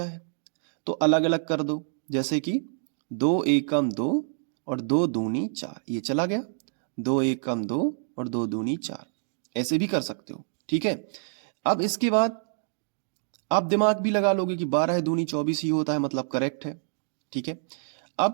है तो अलग अलग कर दो, जैसे कि 2 एकम 2 और 2 दूनी 4, ये चला गया। 2 एकम 2 और 2 दूनी 4, ऐसे भी कर सकते हो। ठीक है, अब इसके बाद आप दिमाग भी लगा लोगे कि 12 दूनी 24 ही होता है, मतलब करेक्ट है। ठीक है,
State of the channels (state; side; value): silent; left; digital silence